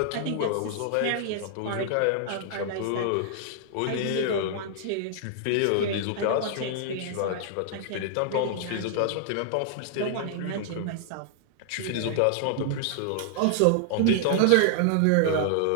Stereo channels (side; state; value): both; different; correlation -0.01